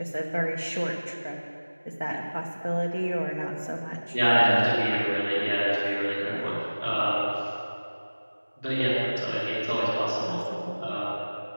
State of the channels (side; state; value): both; inverted; correlation -1.00